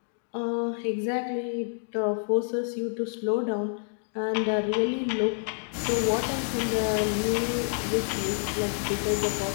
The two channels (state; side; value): silent; right; digital silence